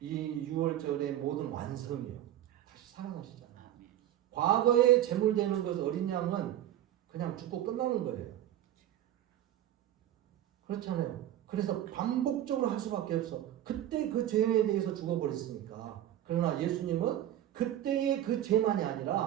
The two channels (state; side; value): quieter; left; 12.2 dB